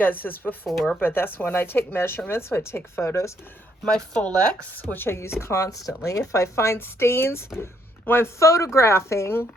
this before, but that's when I take measurements, so I take photos. My Folex, which I use constantly. If I find stains when I'm photographing,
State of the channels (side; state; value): both; normal; correlation 0.71